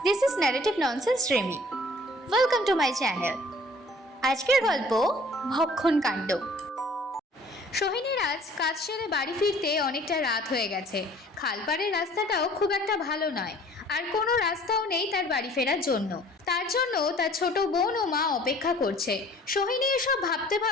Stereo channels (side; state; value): both; normal; correlation 0.52